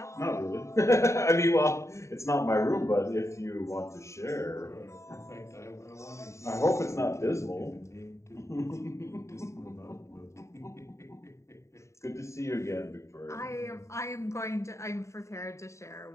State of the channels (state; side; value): late; right; 0.14 ms